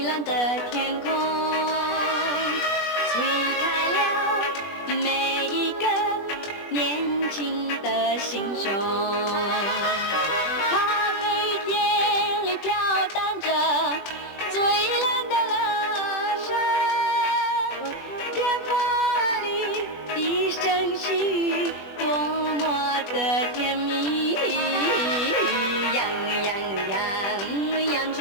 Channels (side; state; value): right; late; 21 ms